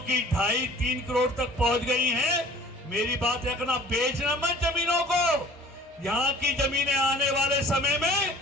2.5-3 करोड़ तक पहुंच गई हैं। मेरी बात रखना, बेचना मत जमीनों को। यहाँ की जमीनें आने वाले समय में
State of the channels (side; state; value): both; normal; correlation 0.48